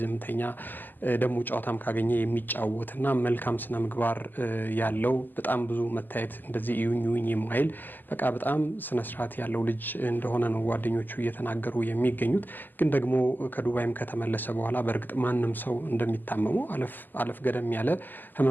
ዝምተኛ፣ ደሞ ጨዋታም ካገኘ የሚጫወትና መልካም ስነ ምግባር ያለው በጣም ብዙ መታየት እንደዚህ ይዩኝ የማይል በቃ በጣም ስነ ስርዓት ያለው ልጅ እንደሆነ ነው ጓደኞቹ እየተናገሩ የሚገኙት። ግን ደግሞ ከዱባይም ከተመለሰ በኋላ በእርግጥ ማንም ሰው እንደሚታመመው አለፍ ገደም ያለ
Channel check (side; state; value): right; late; 0.089 ms